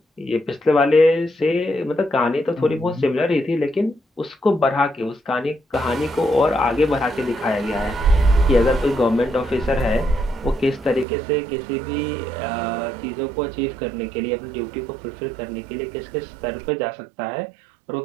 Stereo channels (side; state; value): left; drops out; at 11.1 s